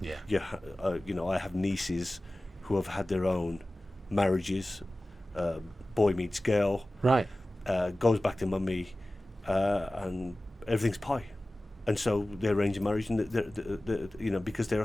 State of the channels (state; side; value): normal; both; correlation 0.97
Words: Yeah. You know, I have nieces who have had their own marriages. Boy meets girl. Right. Goes back to mummy, and everything's pie. And so they arrange a marriage, and you know, because there are